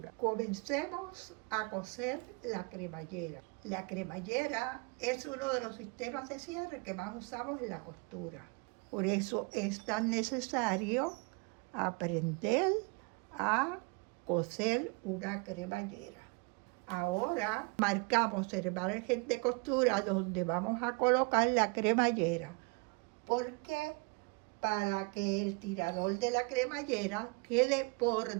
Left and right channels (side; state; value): left; quieter; 31.2 dB